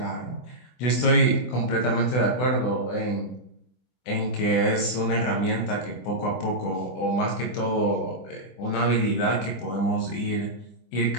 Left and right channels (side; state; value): right; late; 24 ms